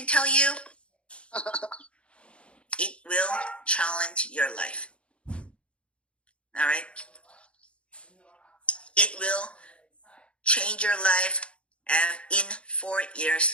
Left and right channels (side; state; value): right; late; 0.059 ms